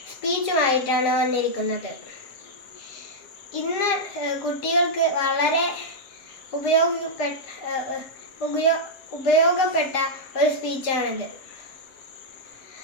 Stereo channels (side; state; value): right; late; 7.5 ms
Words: സ്പീച്ചുമായിട്ടാണ് വന്നിരിക്കുന്നത്. ഇന്ന് കുട്ടികൾക്ക് വളരെ ഉപയോഗപ്പെട്ട ഒരു സ്പീച്ചാണിത്.